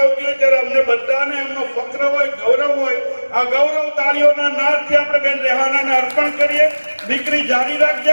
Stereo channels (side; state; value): both; inverted; correlation -1.00